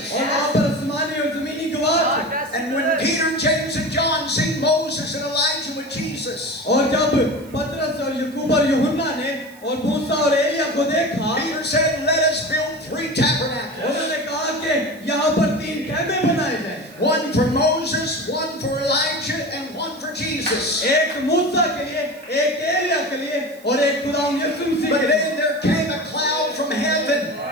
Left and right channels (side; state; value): right; noise; hiss, 25 dB below the sound